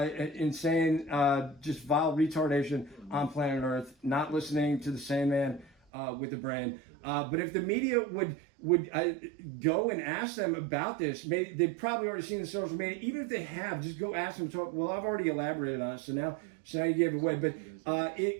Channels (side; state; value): left; drops out; at 5.7 s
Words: insane, just vile retardation on planet Earth, not listening to the sane man with a brain. But if the media would go and ask them about this, maybe they've probably already seen the social media. Even if they have, just go ask them to talk. Well, I've already elaborated on it, so now you gave it away. But